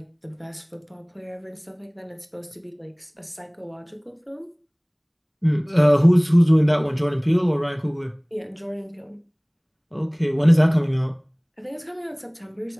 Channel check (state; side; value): identical; both; correlation 1.00